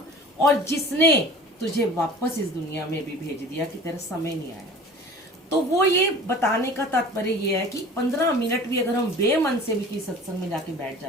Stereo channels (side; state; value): both; normal; correlation 0.42